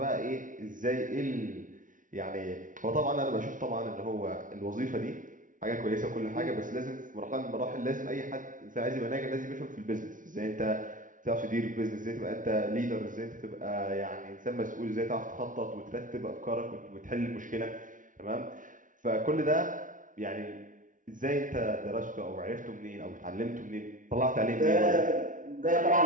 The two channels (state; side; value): late; left; 0.38 ms